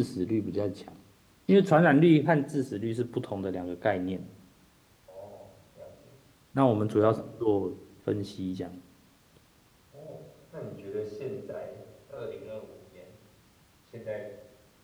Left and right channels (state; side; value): identical; both; correlation 1.00